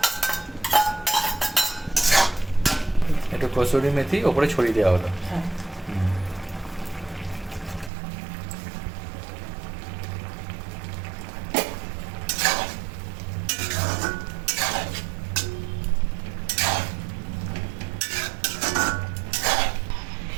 একটু কসুরি মেথি ওপরে ছড়িয়ে দেওয়া হলো।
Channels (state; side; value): drops out; left; at 7.9 s